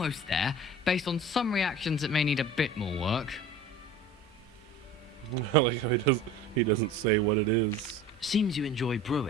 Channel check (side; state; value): both; normal; correlation 0.39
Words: there. Based on some reactions, it may need a bit more work. I like how he doesn't say what it is. Seems you enjoy